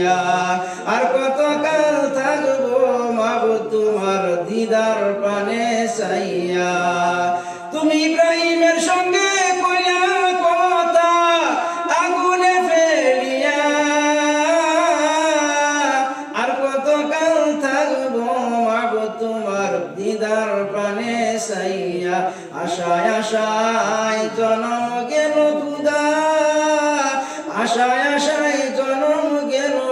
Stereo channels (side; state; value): both; identical; correlation 1.00